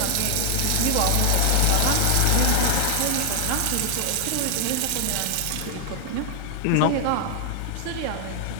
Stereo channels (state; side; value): different; both; correlation 0.00